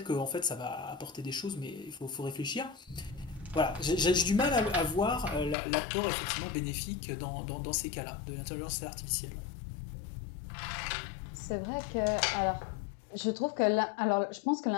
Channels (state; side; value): drops out; right; at 5.6 s